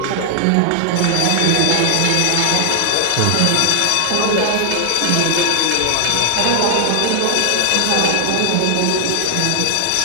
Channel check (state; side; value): different; both; correlation 0.00